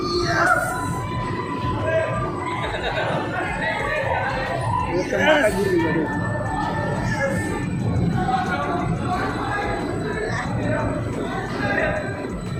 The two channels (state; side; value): identical; both; correlation 1.00